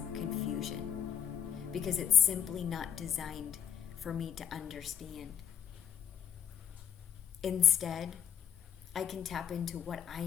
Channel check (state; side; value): quieter; right; 8.9 dB